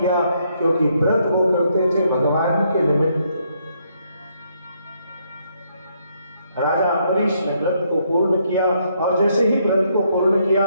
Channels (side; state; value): both; inverted; correlation -0.73